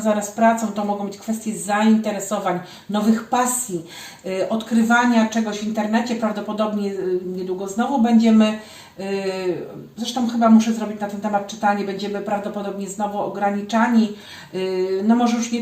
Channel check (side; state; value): both; identical; correlation 1.00